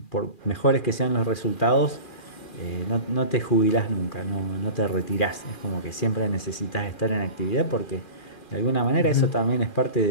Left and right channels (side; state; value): right; late; 2.4 ms